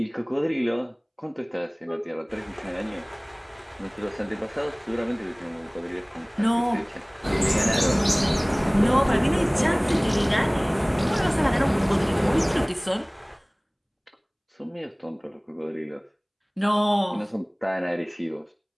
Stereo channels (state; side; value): identical; both; correlation 1.00